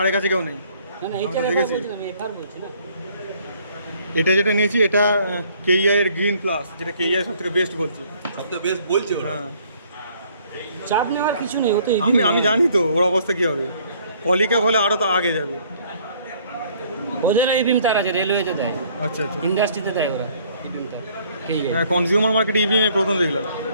কাছে কেউ নেই। না না, এইচআর এফআর বলছি না, আমি এফআর বলছি না। এটা যেটা নিয়েছি এটা কেইআই এর গ্রিন প্লাস, যেটা কেইআই সব থেকে বেস্ট বলছি। সবথেকে বেস্ট বলছে ওরা। হ্যাঁ, চাপ নেওয়ার কিছু নেই, ও তো আমি জানি তো ওর অবস্থা কি হবে। পলিক্যাপ হলে আরো তো আগে যাবে। ওদের ইবিএম তার আছে, রেলওয়েতে দেয়, আচ্ছা আচ্ছা। ইন্ডাস্ট্রিতে দেয় ওরা ইবিএম তার। হ্যাঁ, কনজিউমার মার্কেটে ইভিএম প্রথম দেখলাম,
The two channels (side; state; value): both; inverted; correlation -0.61